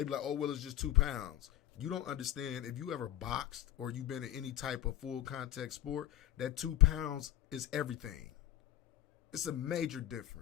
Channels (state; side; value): quieter; right; 12.7 dB